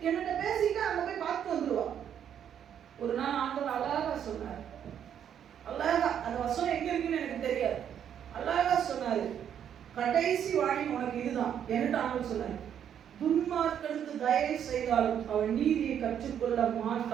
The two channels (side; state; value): left; quieter; 9.1 dB